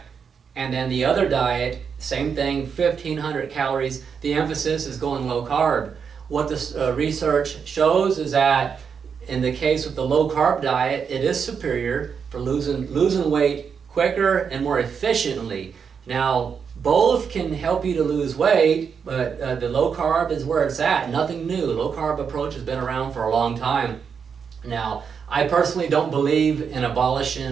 and then the other diet, same thing, 1,500 calories, the emphasis is going low carb. What this research shows is that in the case with the low carb diet, it is superior for losing weight quicker and more efficiently. Now, both can help you to lose weight, but the low carb is where it's at. Nothing new. Low carb approach has been around for a long time. Now, I personally don't believe in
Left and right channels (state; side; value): quieter; left; 6.5 dB